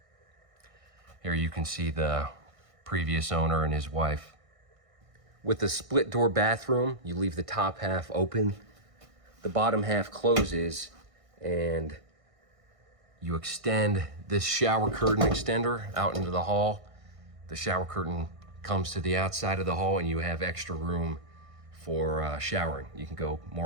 Here you can see the previous owner and his wife. With the split door bathroom, you leave the top half open, the bottom half closes, and you extend this shower curtain extender out into the hall. The shower curtain comes to the outside of the hall and you have extra room for showering. You can go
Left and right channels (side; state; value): left; late; 1.6 ms